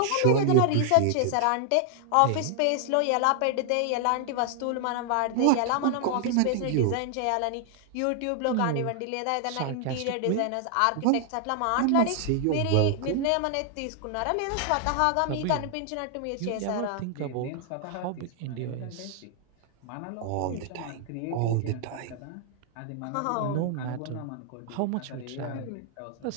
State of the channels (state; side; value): different; both; correlation 0.00